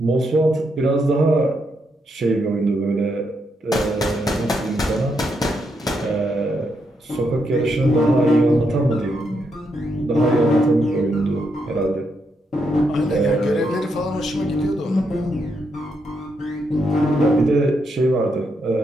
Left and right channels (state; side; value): normal; both; correlation 0.80